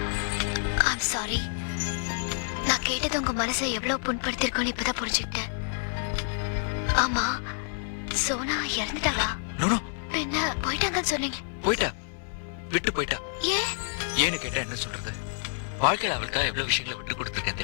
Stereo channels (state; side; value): silent; right; digital silence